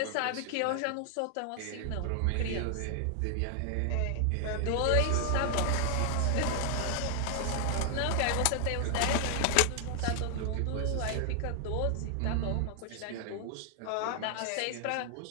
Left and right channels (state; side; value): different; both; correlation 0.00